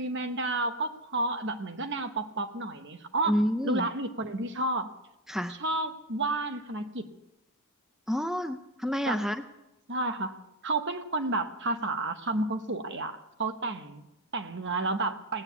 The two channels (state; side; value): normal; both; correlation 0.15